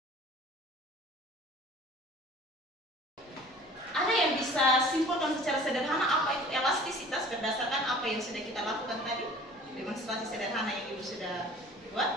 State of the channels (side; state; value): both; normal; correlation 0.47